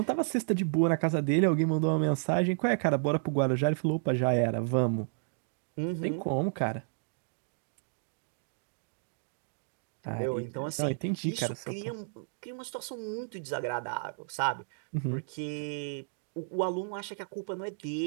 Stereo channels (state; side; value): silent; left; digital silence